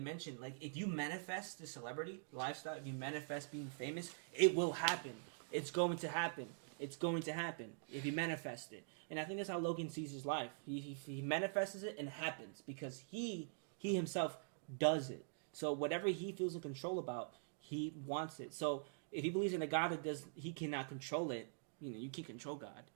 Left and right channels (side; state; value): left; silent; digital silence